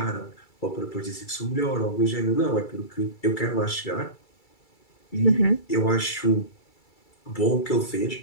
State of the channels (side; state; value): right; late; 2.3 ms